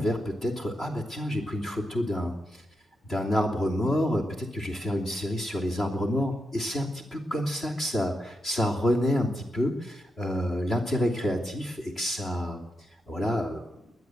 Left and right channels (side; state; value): both; normal; correlation 0.85